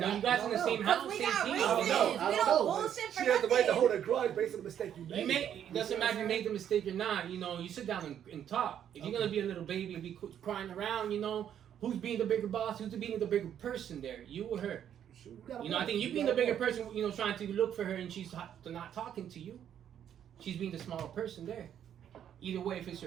know, you guys in the same house, we same got team. reasons. I don't know. We don't bullshit for She has the right to nothing. hold a grudge based on the mistake you made. It doesn't matter if you made the mistake or not. You know, you sit down and talk. If you're gonna be a little baby and be crying around, you know, who's being the bigger boss? Who's being the bigger person there? You or her? You know, I think you being the bigger person. You know, trying to look for her and she's not talking to you. She's being the smaller person there. Either way, if it's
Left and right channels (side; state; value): left; quieter; 9.7 dB